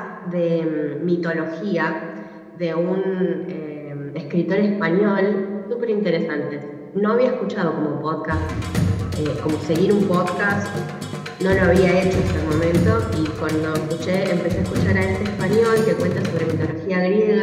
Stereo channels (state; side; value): identical; both; correlation 1.00